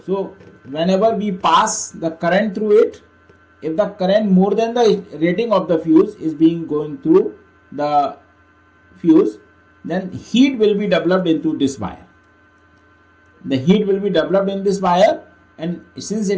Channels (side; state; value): both; identical; correlation 1.00